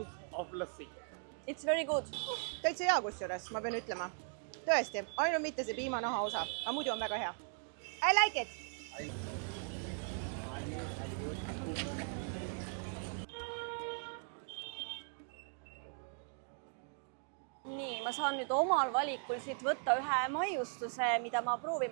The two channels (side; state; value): left; silent; 52 dB below the other